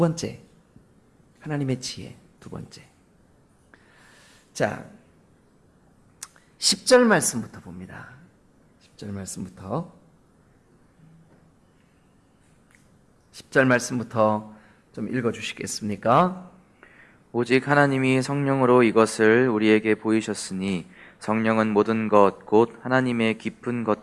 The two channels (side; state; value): both; identical; correlation 1.00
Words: 하나님의 지혜. 두 번째, 자 10절 말씀부터 봅니다. 10절 말씀부터 10절 말씀부터 좀 읽어주시겠습니까? 오직 하나님이 성령으로 이것을 우리에게 보이셨으니 성령은 모든 것 곧 하나님의 깊은